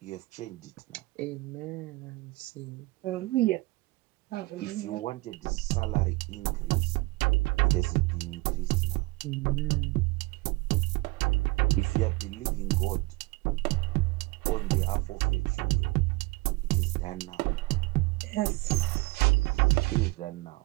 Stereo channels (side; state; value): left; quieter; 23.2 dB